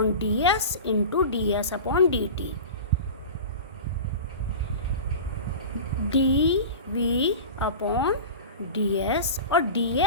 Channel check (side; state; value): both; inverted; correlation -0.32